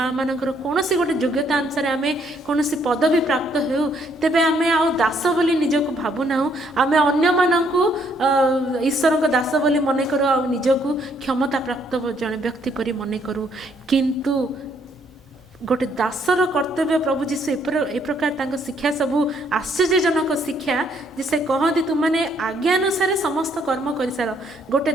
ଆମମାନଙ୍କର କୌଣସି ଗୋଟେ ଯୋଗ୍ୟତା ଅନୁସାରେ ଆମେ କୌଣସି ପଦବୀ ପ୍ରାପ୍ତ ହେଉ ତେବେ ଆମେ ଆଉ ଦାସ ବୋଲି ନିଜକୁ ଭାବୁନାହୁଁ, ଆମେ ଅନ୍ୟମାନଙ୍କୁ ଈଶ୍ୱରଙ୍କ ଦାସ ବୋଲି ମନେ କରୁ ଆଉ ନିଜକୁ କ୍ଷମତା ପ୍ରାପ୍ତ ଜଣେ ବ୍ୟକ୍ତି ପରି ମନେ କରୁ। କିନ୍ତୁ ଗୋଟେ ଦାସର କର୍ତ୍ତବ୍ୟ ପ୍ରଭୁ ଯୀଶୁ ଏ ପ୍ରକାର ତାଙ୍କ ଶିକ୍ଷା ସବୁ ଆଶ୍ଚର୍ଯ୍ୟଜନକ ଶିକ୍ଷା ଯେ ସେ କହନ୍ତି ତୁମମାନେ ଆଜ୍ଞାନୁସାରେ ସମସ୍ତ କର୍ମ କରିସାର। ଗୋଟେ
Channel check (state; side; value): normal; both; correlation 0.68